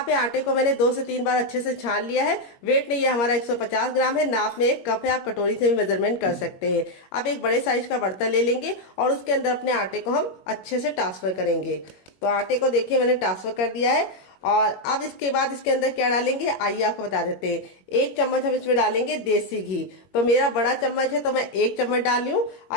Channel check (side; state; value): right; late; 21 ms